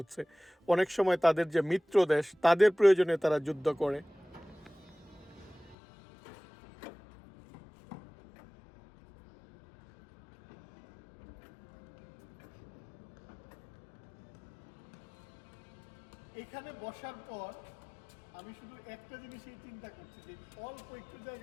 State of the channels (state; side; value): drops out; right; at 5.8 s